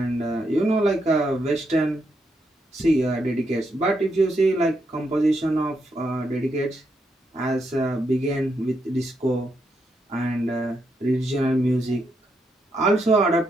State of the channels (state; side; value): normal; both; correlation 0.80